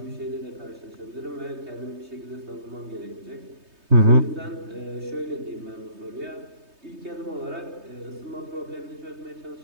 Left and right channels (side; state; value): left; late; 3.2 ms